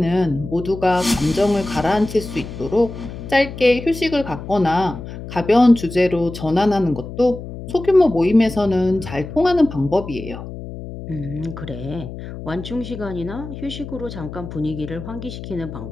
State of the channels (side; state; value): left; noise; hum, 11 dB below the sound